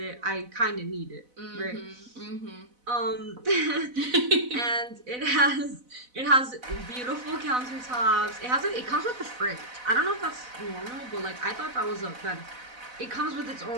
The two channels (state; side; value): late; left; 4.0 ms